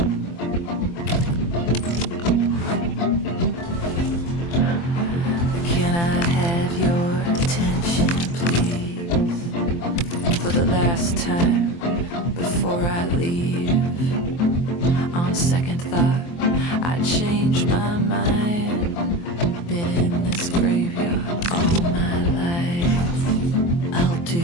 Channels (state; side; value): late; right; 23 ms